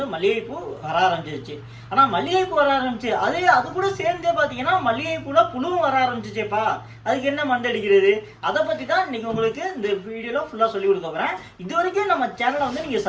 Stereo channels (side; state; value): both; identical; correlation 1.00